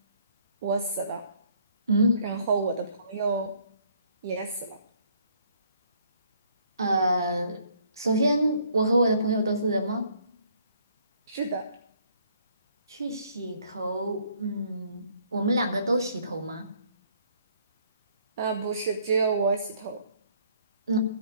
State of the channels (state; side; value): inverted; both; correlation -0.63